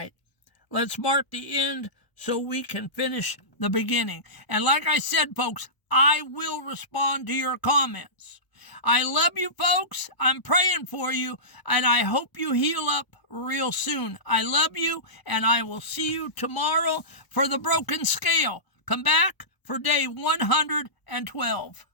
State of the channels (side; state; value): right; late; 1.0 ms